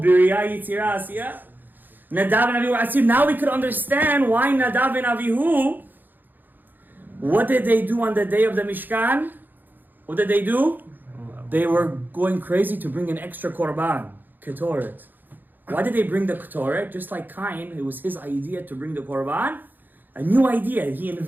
Yitzirah, Asiyah. Nadav and Avihu were Atzilut. Now we could understand why Nadav and Avihu, what did they do on the day of the Mishkan? What did they do? They were going crazy to bring an extra korban, ketoret. Why did they bring the ketoret? Just like Cain, it was his idea to bring the korban. A new idea. He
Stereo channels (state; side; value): late; left; 0.088 ms